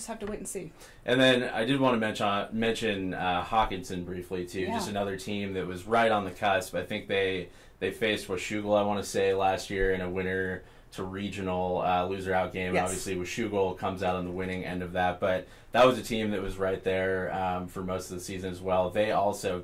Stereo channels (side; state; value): both; identical; correlation 1.00